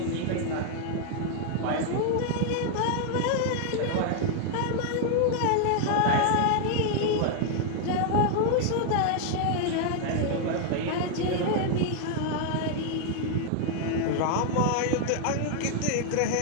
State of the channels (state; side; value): different; both; correlation 0.00